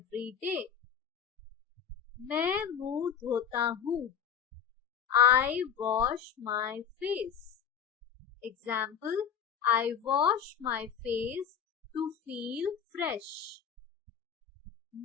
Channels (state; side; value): quieter; right; 8.1 dB